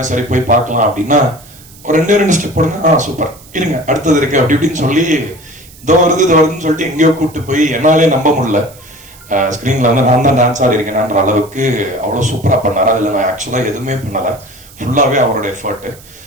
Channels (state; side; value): noise; right; hiss, 23 dB below the sound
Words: சரி போய் பார்க்கலாம் அப்படின்னா ஒரு ரெண்டு ஸ்டெப் போடுங்க, சூப்பர் இருங்க அடுத்தது இருக்கு அப்படி இப்படின்னு சொல்லி இதோ வருதுன்னு சொல்லிட்டு எங்கேயோ கூப்பிட்டு போய் என்னாலே நம்ப முடியல. ஸ்கிரீன்ல வந்து நான் தான் டான்ஸ் ஆடி இருக்கேன்ற அளவுக்கு அவ்வளவு சூப்பரா பண்ணாரு. அதுல நான் ஆக்சுவலா எதுவுமே பண்ணல, ஃபுல்லாவே அவரோட effort.